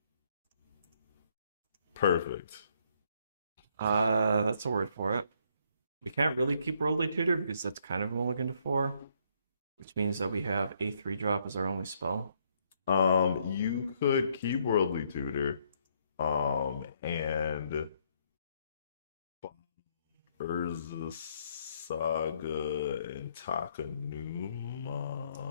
Perfect. That's a word for it. We can't really keep Worldly Tutor because that's kind of a mulligan to 4, which means that we have a 3-drop as our only spell. You could keep Worldly Tutor, and Urza Saga and Takanuma.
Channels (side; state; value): both; inverted; correlation -0.70